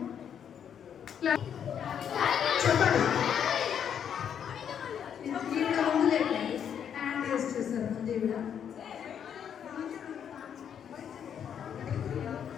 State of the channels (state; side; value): quieter; right; 8.5 dB